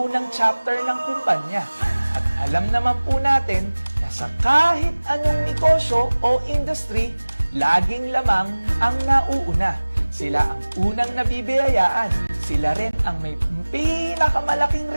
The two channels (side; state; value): both; inverted; correlation -1.00